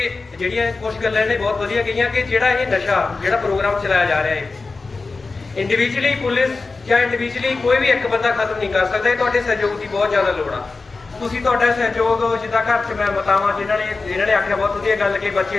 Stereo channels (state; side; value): quieter; right; 3.9 dB